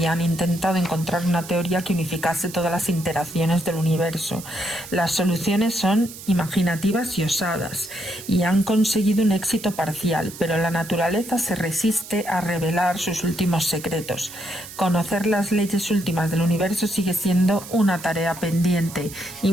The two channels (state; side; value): noise; right; hiss, 14 dB below the sound